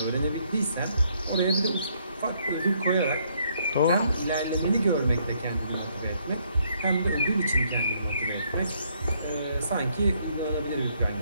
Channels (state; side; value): inverted; both; correlation -0.70